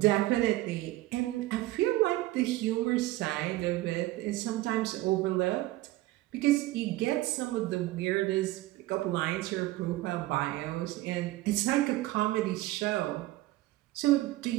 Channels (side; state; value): left; quieter; 17.6 dB